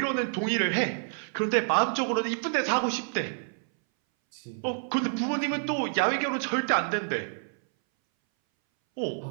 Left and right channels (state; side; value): silent; left; 59 dB below the other